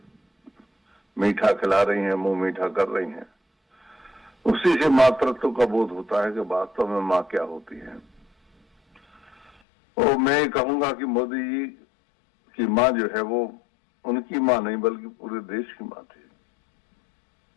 मीठा खिला रही हैं, मुंह मीठा कर रही हैं, उसी से मातृत्व का बोध होता है कि वास्तव में माँ क्या होती है। और मैं कहूंगा कि मोदी जी की माँ जो है वो उनकी माँ नहीं बल्कि पूरे देश की माँ थी।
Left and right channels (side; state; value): right; drops out; at 9.5 s